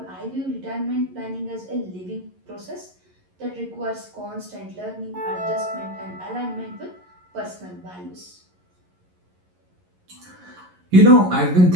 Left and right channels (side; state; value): left; late; 11 ms